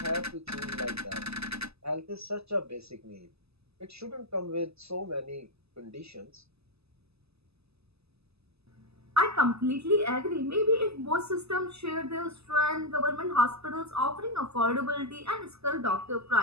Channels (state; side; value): late; left; 0.79 ms